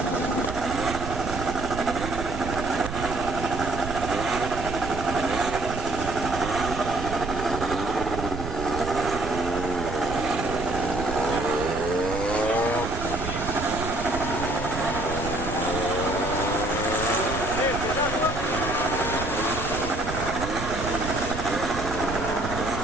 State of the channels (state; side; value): noise; right; rumble, 7 dB below the sound